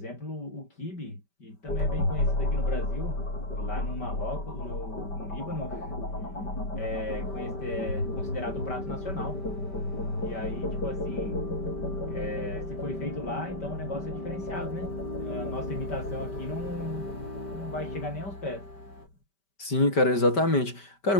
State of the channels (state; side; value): late; right; 5.1 ms